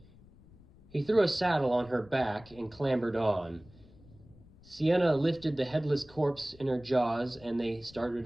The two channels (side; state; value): left; noise; rumble, 24 dB below the sound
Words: He threw a saddle on her back and clambered on. Sienna lifted the headless corpse in her jaws, and they